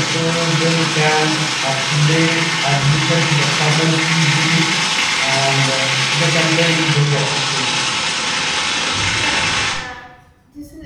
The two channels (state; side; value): identical; both; correlation 1.00